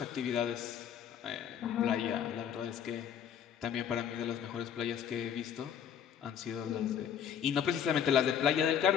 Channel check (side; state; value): right; quieter; 8.6 dB